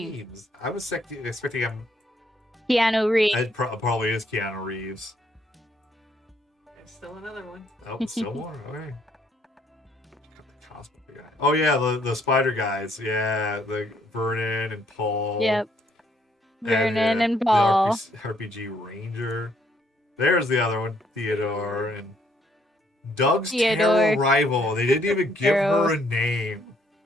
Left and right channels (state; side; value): normal; both; correlation 0.68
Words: I was expecting him. Keanu Reeves. It probably is Keanu Reeves. There's still another one. Oh, still more? Okay. Got the cosplay guy. Oh, yeah, the spider guys. Yeah, the Vernon and Paul. Yep. Vernon and the Paul. RPG Ranger. There's the other one, Theodore. And Doug's Theodore. terrible rival. They didn't even give Arrow. her a name.